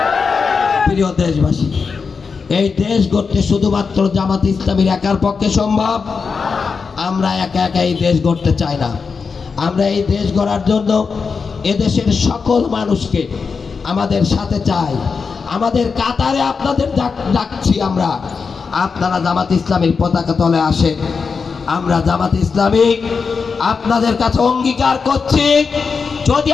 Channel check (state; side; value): quieter; right; 5.2 dB